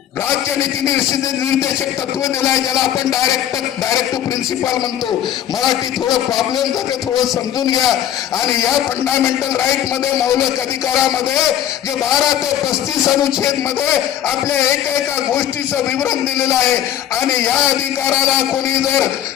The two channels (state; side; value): quieter; right; 10.7 dB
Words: राज्य नीती निर्देशक तत्व दिलाय, ज्याला आपण डायरेक्ट प्रिन्सिपल म्हणतो. मराठी थोडं प्रॉब्लेम जाते, थोडं समजून घ्या. आणि या फंडामेंटल राईट मध्ये मौलिक अधिकारामध्ये जे 12 ते 35 अनुच्छेद मध्ये आपल्या एका गोष्टीचं विवरण दिलेलं आहे. आणि या अधिकाराला कोणी जर